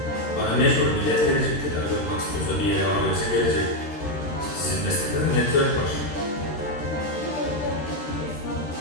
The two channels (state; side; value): late; right; 13 ms